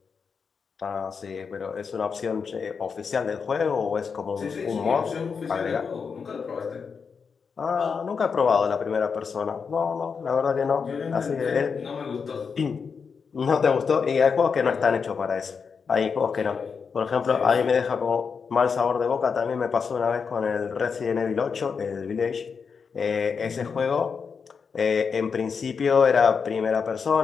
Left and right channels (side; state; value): right; quieter; 5.8 dB